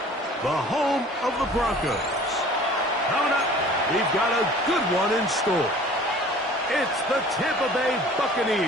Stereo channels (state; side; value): normal; both; correlation 0.48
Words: the home of the Broncos. Coming up, we've got a good one in store. It's the Tampa Bay